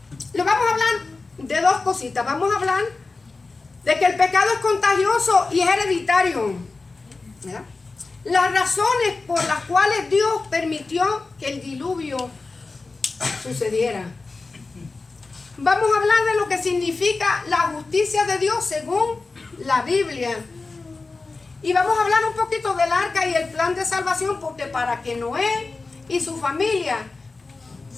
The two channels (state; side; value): quieter; right; 3.8 dB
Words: Le vamos a hablar de dos cositas. Vamos a hablar de que el pecado es contagioso y es hereditario, ¿verdad? Las razones por las cuales Dios permitió que el diluvio sucediera. Vamos a hablar de lo que significa la justicia de Dios según la Biblia. Y vamos a hablar un poquito del arca y el plan de salvación, porque para que Noé y su familia